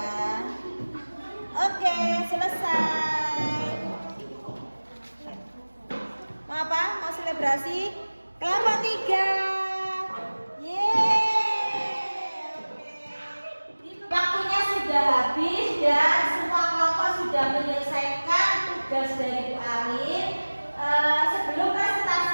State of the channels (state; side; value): inverted; both; correlation -1.00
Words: Oke, selesai. Mau apa? Mau selebrasi? Kelompok 3. Yeay. Oke. Waktunya sudah habis dan semua kelompok sudah menyelesaikan tugas dari Bu Arin. Sebelum